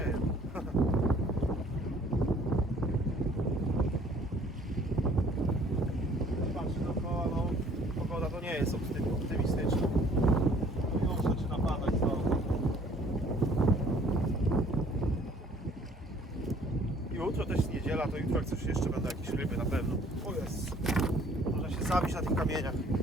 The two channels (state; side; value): normal; both; correlation 0.57